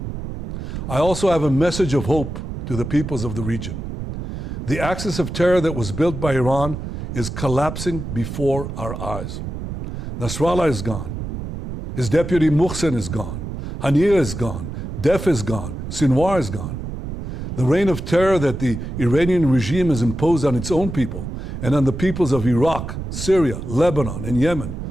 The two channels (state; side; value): noise; right; rumble, 7 dB below the sound